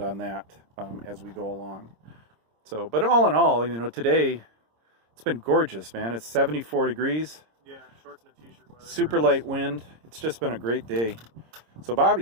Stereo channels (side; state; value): left; late; 26 ms